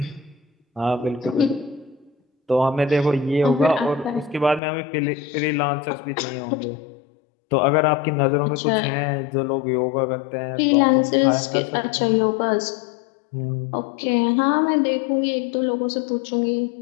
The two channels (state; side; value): drops out; right; at 4.6 s